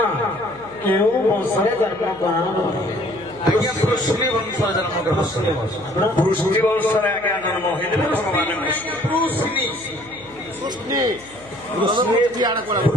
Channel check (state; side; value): noise; left; hum, 22 dB below the sound